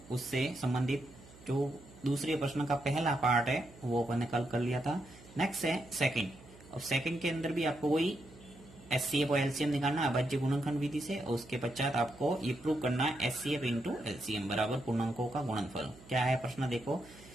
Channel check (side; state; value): right; noise; hum, 21 dB below the sound